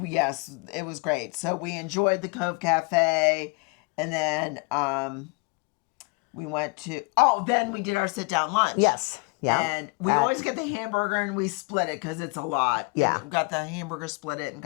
yes, it was great. So we enjoyed the Cove Cafe, and then we went to then we did our sit down lunch. Yes. Yeah. And we always get the hamburger and we split it because it's a lot. Yeah. And we got the hamburger, split it, and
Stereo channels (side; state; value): right; quieter; 30.9 dB